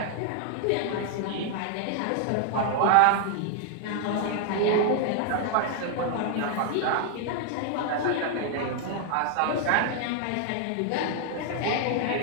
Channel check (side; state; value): both; different; correlation 0.00